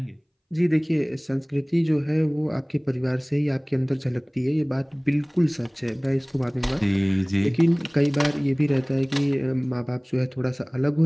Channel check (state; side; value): identical; both; correlation 1.00